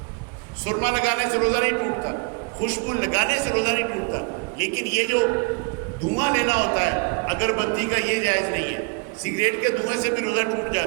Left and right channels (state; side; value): quieter; left; 34.7 dB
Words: سرما لگانے سے روزہ نہیں ٹوٹتا، خوشبو لگانے سے روزہ نہیں ٹوٹتا. لیکن یہ جو دھواں لینا ہوتا ہے اگربتی کا یہ جائز نہیں ہے. سگریٹ کے دھوئیں سے بھی روزہ ٹوٹ